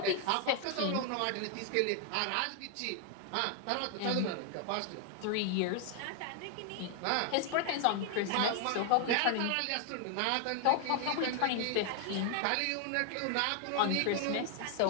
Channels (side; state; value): both; different; correlation 0.00